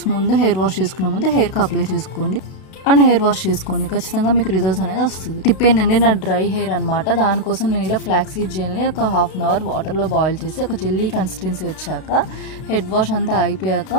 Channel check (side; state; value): right; late; 32 ms